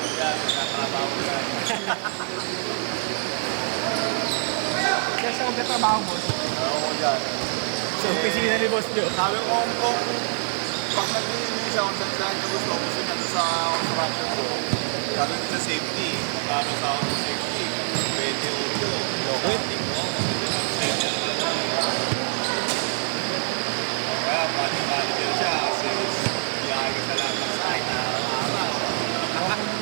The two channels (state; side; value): silent; left; digital silence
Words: yan. Nakatrabaho yan. Kaya siya magkatrabaho, boss. Oo dyan. Sa opisina ni Boss Joe. Sabi ko kung pag nag-iinis siya kung saan ka gusto ko gusto niya sa construction ko. Sabi ko sa safety. Magkano sa ako sa safety? 28. Okay. Kaya pati-pati din siya kasi biyahe ka sa lahat ng site na araw. Ano,